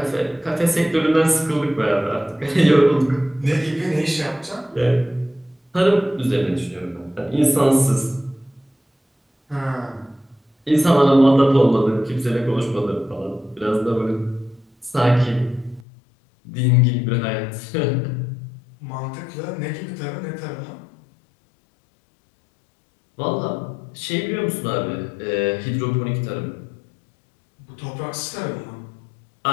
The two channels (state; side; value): drops out; right; at 15.9 s